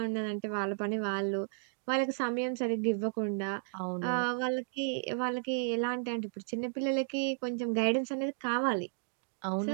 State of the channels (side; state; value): left; silent; digital silence